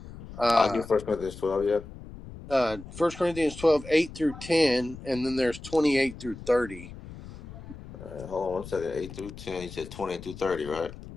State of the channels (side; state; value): left; noise; rumble, 14 dB below the sound